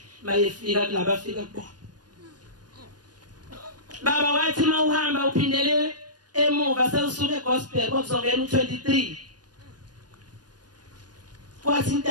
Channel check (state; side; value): late; left; 0.69 ms